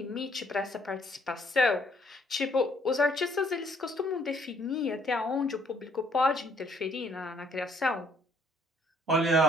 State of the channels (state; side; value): normal; both; correlation 0.65